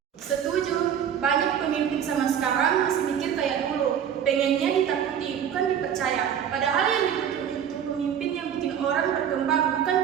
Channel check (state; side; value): quieter; left; 8.8 dB